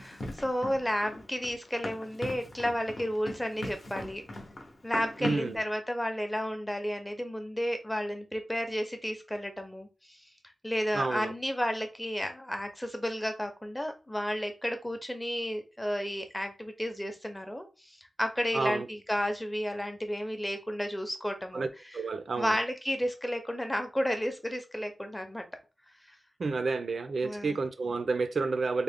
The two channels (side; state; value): both; normal; correlation 0.96